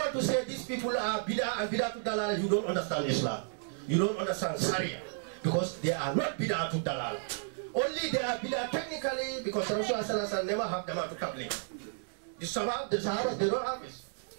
to say these people are bidah and bidah to dalala, you don't understand Islam. You don't understand Sharia. Because they are not bidah to dalala. Only they are bidah technically because Rasulullah never have Jamaatul Tabligh. The Sahabas, they don't have it.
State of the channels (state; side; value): silent; left; digital silence